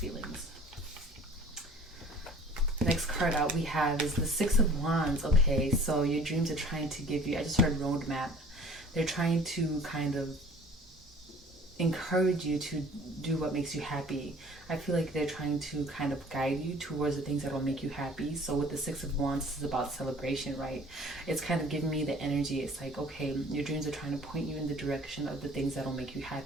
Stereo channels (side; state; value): both; normal; correlation 0.49